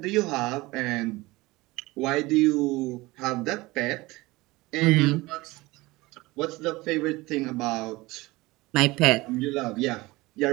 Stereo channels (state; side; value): quieter; left; 20.9 dB